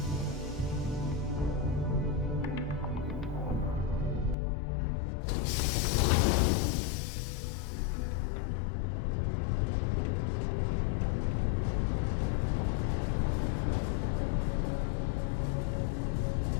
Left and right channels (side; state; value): right; drops out; at 4.4 s